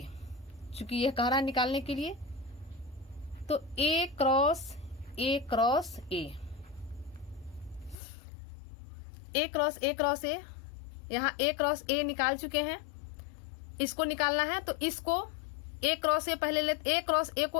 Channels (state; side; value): drops out; right; at 8.0 s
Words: चूंकि यह कह रहा है निकालने के लिए। तो A क्रॉस A, यहाँ A क्रॉस A निकाल चुके हैं, इसको निकालना है। तो इसको A क्रॉस A पहले लेते, A क्रॉस A